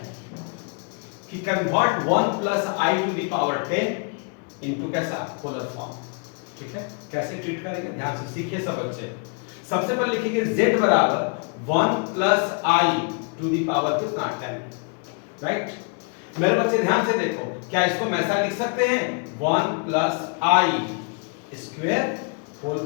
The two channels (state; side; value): quieter; right; 37.8 dB